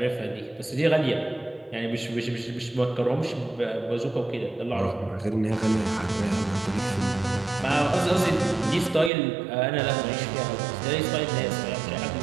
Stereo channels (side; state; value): left; drops out; at 9.1 s